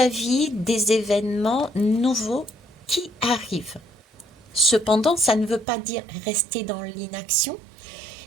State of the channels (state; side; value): drops out; left; at 5.7 s